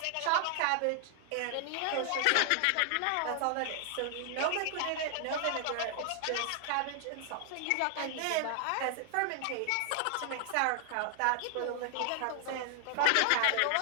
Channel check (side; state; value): both; different; correlation 0.00